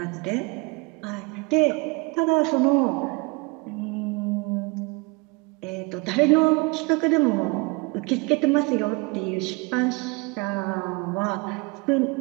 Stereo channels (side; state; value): left; quieter; 27.5 dB